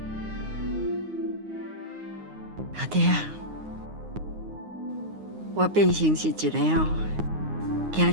阿爹啊，我变成是一个惊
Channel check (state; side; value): late; left; 9.6 ms